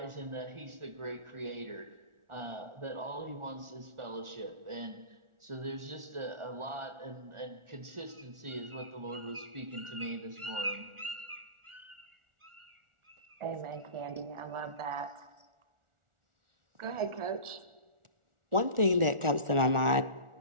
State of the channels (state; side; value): late; left; 1.4 ms